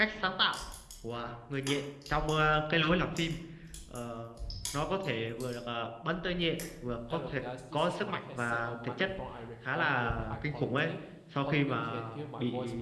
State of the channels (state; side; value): identical; both; correlation 1.00